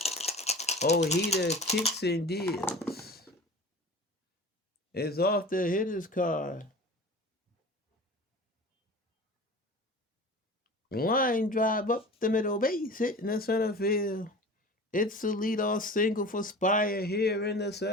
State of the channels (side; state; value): both; normal; correlation 0.38